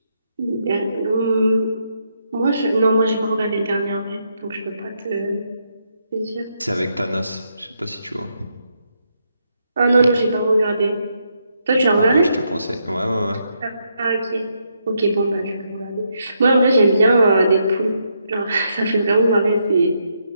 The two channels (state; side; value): inverted; both; correlation -0.79